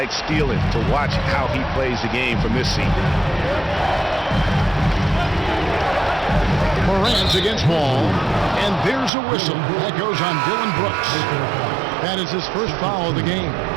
stealing to watch how he plays the game from this seat. Morant's against Wall, and there's a whistle that goes on Dylan Brooks. That is his first foul of the game.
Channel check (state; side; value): drops out; left; at 9.1 s